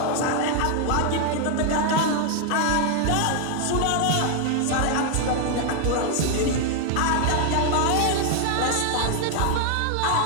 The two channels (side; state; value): both; different; correlation 0.00